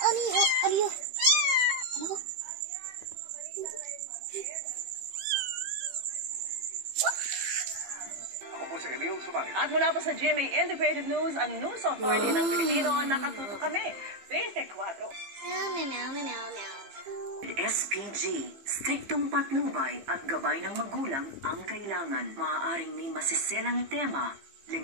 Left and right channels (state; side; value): late; left; 15 ms